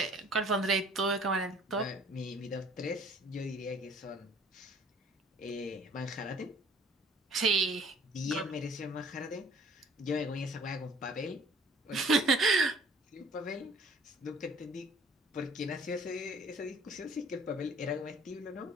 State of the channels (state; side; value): normal; both; correlation 0.53